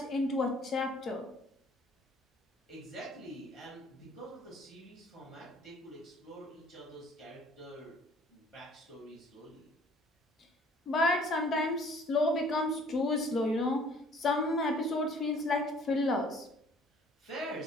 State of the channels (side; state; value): both; normal; correlation 0.56